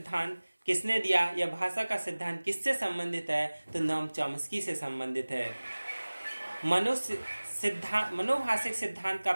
किसने दिया या भाषा का सिद्धांत किससे संबंधित है, तो नोम चॉम्स्की से संबंधित है। मनोभाषिक सिद्धांत का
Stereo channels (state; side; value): inverted; both; correlation -1.00